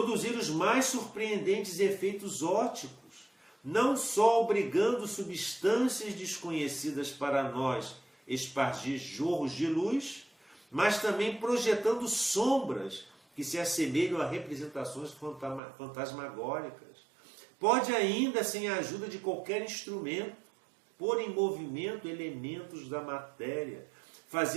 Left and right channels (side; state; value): left; drops out; at 15.6 s